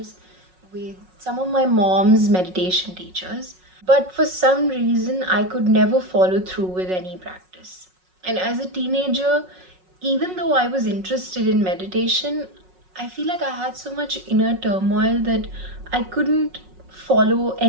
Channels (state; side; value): late; left; 5.4 ms